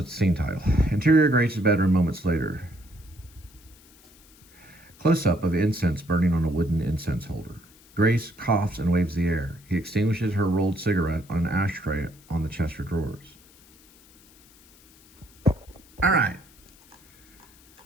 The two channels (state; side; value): noise; left; hiss, 27 dB below the sound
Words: scene title. Interior, Grace's bedroom, moments later. Close-up of incense burning on a wooden incense holder. Grace coughs and waves the air. He extinguishes her rolled cigarette on an ashtray on the chest of drawers. All right.